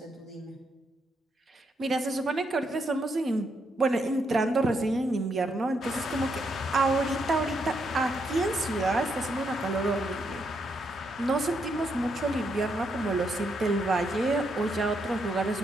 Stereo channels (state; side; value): normal; both; correlation 0.78